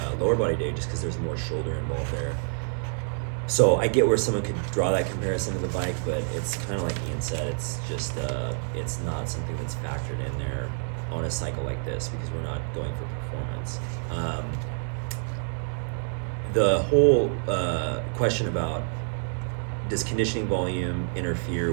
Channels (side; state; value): left; silent; 56 dB below the other